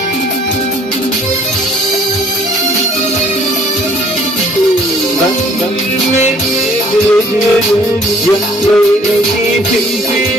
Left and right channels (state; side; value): normal; both; correlation 0.58